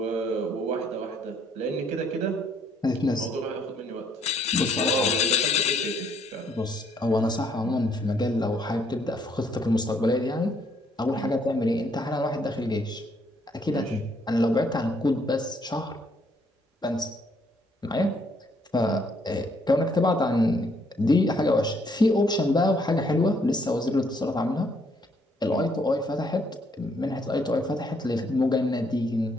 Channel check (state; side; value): normal; both; correlation 0.68